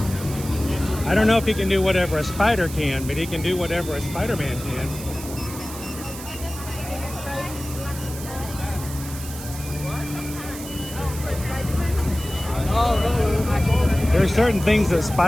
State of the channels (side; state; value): right; noise; hiss, 12 dB below the sound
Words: I don't know if he can do whatever a spider can, but he can do whatever a Spider-Man can. There are certain things that